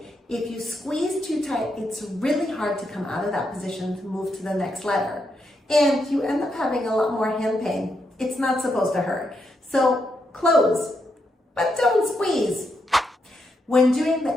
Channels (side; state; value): both; normal; correlation 0.81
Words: If you squeeze too tight, it's really hard to come out of that position to move to the next letter. And you end up having a lot more hand pain. It's not supposed to hurt. So close, but don't squeeze. When doing